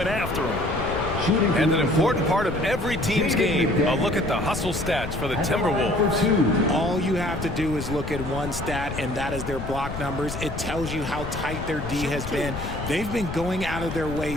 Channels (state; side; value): noise; left; rumble, 7 dB below the sound